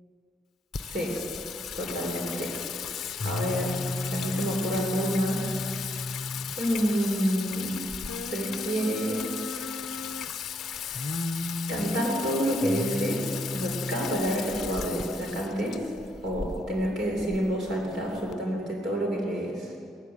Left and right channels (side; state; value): both; normal; correlation 0.72